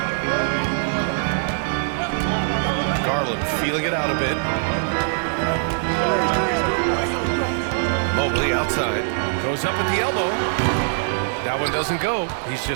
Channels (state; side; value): silent; left; digital silence